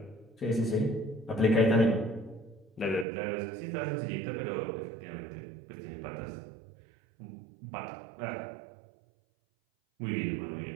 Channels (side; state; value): left; drops out; at 3.1 s